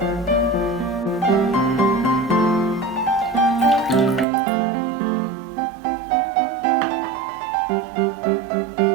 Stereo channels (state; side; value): drops out; left; at 4.2 s